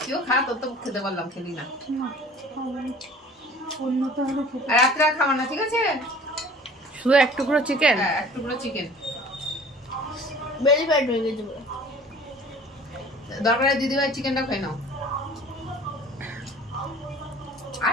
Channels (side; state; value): both; normal; correlation 0.47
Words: কেউ খা, তোর তো খেতে বললাম, খেলি না। আর রাত্রে আর খাবার না, ঠিক আছে? শুধু এক টুকরো চিকেন। হ্যাঁ, এক টুকরো চিকেন। বেলি ফ্যাট হয়ে গেছে। দরকারে দিদিভাই চিকেনটা খাই নাও।